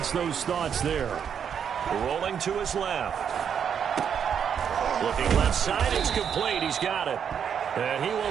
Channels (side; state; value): left; quieter; 7.8 dB